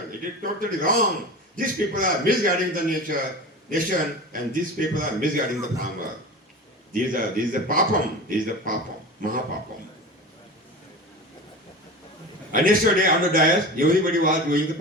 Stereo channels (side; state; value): both; normal; correlation 0.31